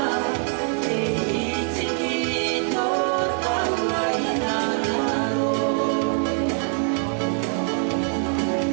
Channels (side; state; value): left; quieter; 38.7 dB